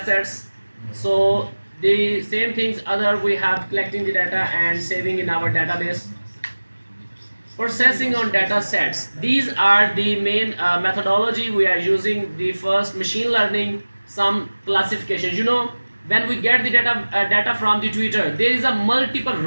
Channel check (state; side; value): inverted; both; correlation -1.00